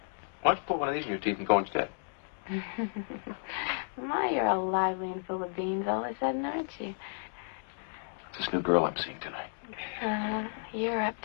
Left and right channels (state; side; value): silent; right; digital silence